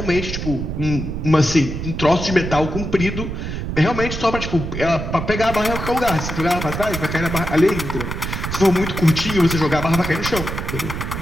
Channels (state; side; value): noise; right; rumble, 5 dB below the sound